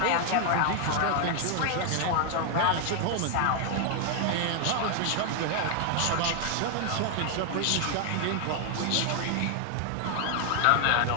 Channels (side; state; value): both; different; correlation 0.00